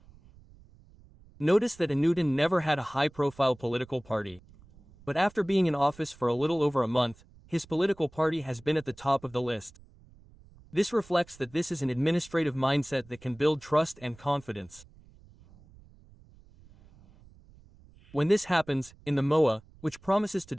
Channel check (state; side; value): noise; right; rumble, 25 dB below the sound